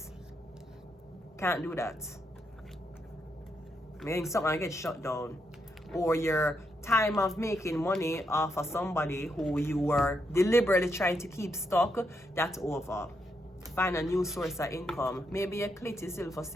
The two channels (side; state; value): both; normal; correlation 0.80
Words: Can't do that. Meaning something gets shut down. Or your time of making money off of somebody who you were deliberately trying to keep stuck, that's over. Find a new source of income. Maybe a clit is still for